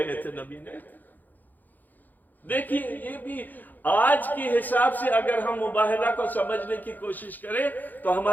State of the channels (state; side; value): late; right; 0.085 ms